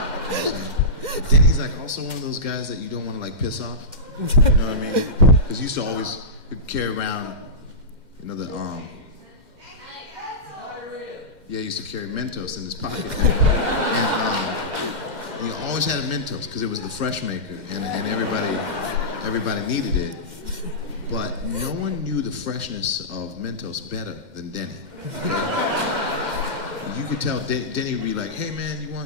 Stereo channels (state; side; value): late; left; 2.1 ms